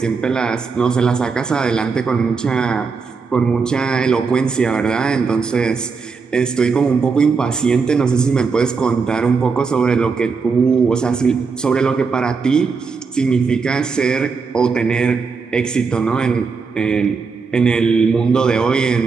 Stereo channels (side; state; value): left; quieter; 5.0 dB